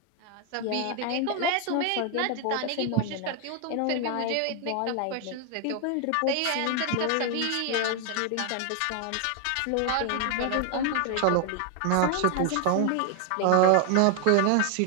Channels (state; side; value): different; both; correlation 0.00